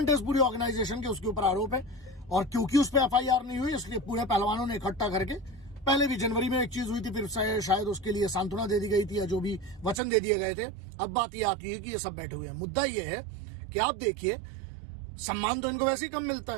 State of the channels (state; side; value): drops out; left; at 10.0 s